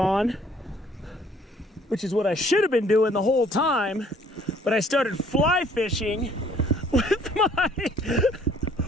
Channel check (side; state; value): both; normal; correlation 0.59